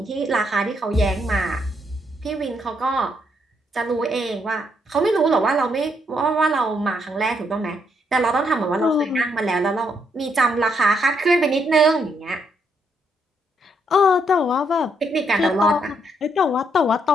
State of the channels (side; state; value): both; normal; correlation 0.75